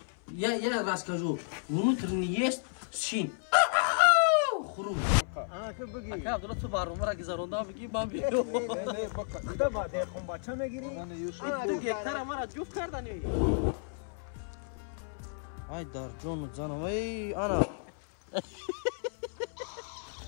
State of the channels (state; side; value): silent; right; 56 dB below the other